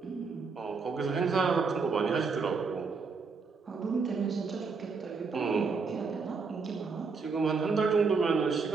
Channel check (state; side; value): quieter; left; 4.8 dB